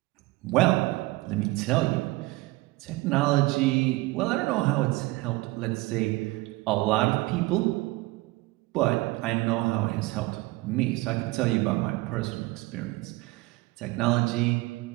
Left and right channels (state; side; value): quieter; left; 21.0 dB